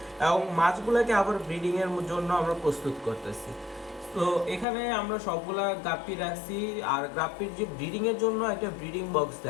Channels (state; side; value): drops out; right; at 4.7 s